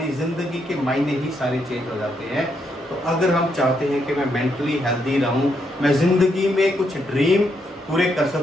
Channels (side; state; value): both; normal; correlation 0.77